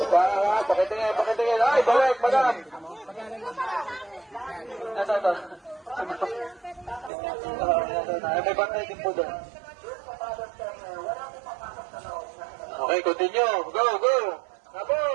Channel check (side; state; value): left; drops out; at 7.1 s